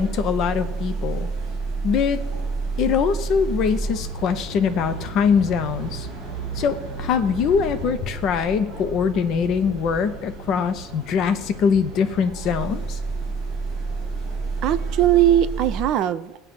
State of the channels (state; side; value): normal; both; correlation 0.50